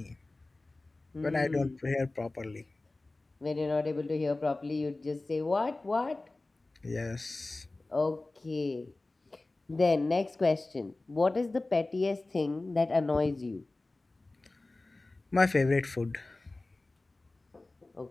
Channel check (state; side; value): quieter; right; 3.1 dB